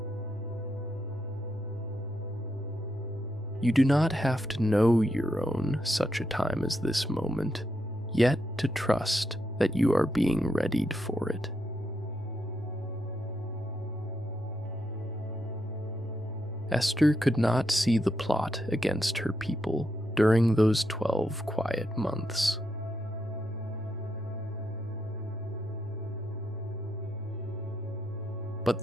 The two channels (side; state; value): both; normal; correlation 0.81